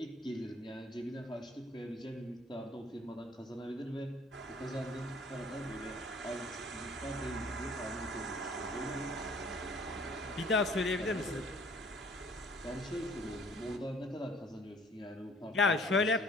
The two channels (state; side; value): normal; both; correlation 0.54